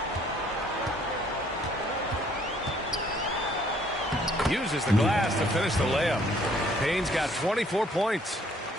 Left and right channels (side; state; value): both; normal; correlation 0.62